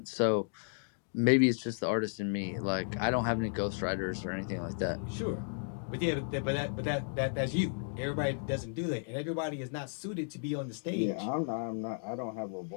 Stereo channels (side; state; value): right; silent; digital silence